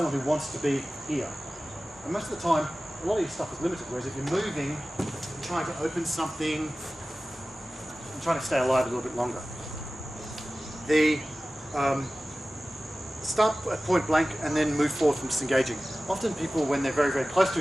who wants to be here. And most of the time, a lot of your stuff is limited, whereas if you're moving, you're trying to open something, and trying to stay alive a little bit longer. The start at point blank and then move forward from disengaging. Often people, when they're very, very close to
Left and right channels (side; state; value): both; normal; correlation 0.96